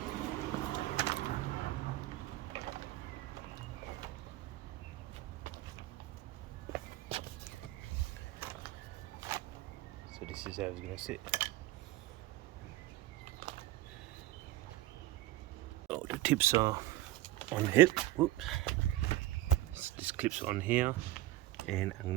So this is how it's going to sit. Oh, the tips are on the hip. Whoops. This clips on here, and I'm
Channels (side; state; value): left; quieter; 16.0 dB